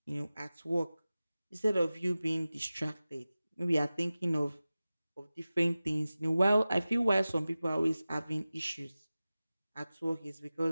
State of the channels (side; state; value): both; inverted; correlation -0.96